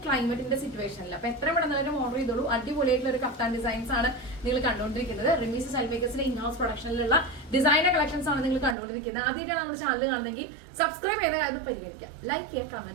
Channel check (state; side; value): drops out; left; at 8.8 s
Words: ക്ലൈമറ്റിന്റെ സിറ്റുവേഷനിൽ. അപ്പൊ എത്ര പെട്ടെന്ന് ഓർഡർ ചെയ്തോളൂ. അടിപൊളിയായിട്ടുള്ള ഒരു കഫ്താൻ ഡിസൈൻസ് ആണ് നിങ്ങൾ കണ്ടുകൊണ്ടിരിക്കുന്നത്. റിമീസ് സെൽമേക്കേഴ്സിന്റെ ഇൻഹൗസ് പ്രൊഡക്ഷനിലുള്ള ഡിസൈനർ കളക്ഷൻസ് ആണ് നിങ്ങൾ കണ്ടുകൊണ്ടിരിക്കുന്നത്. ആദ്യമായിട്ടാണ് നമ്മുടെ ചാനൽ കാണുന്നെങ്കിൽ സബ്സ്ക്രൈബ് ചെയ്ത കാര്യം പരിഗണിക്കുക, ലൈക്ക് ചെയ്യുക,